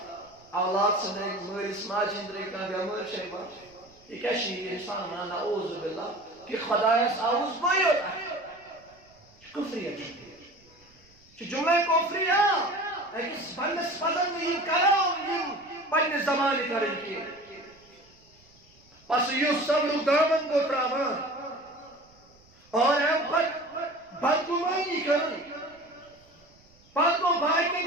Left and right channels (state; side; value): noise; right; rumble, 29 dB below the sound